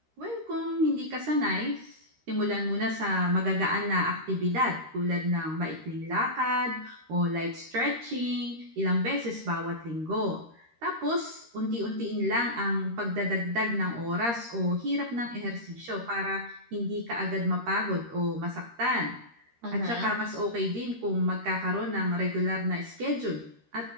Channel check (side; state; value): left; late; 13 ms